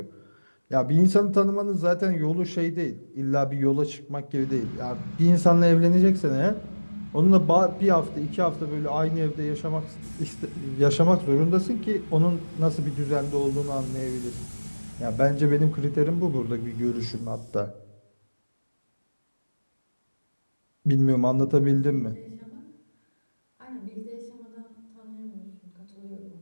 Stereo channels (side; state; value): both; inverted; correlation -1.00